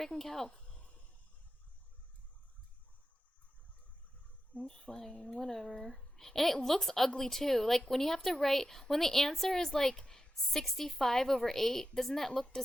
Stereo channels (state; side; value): normal; both; correlation 0.90